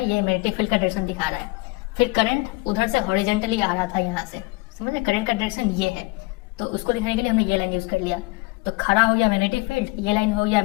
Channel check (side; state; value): right; quieter; 24.6 dB